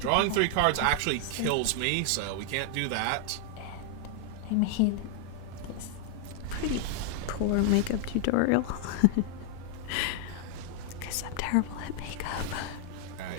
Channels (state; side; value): different; both; correlation 0.00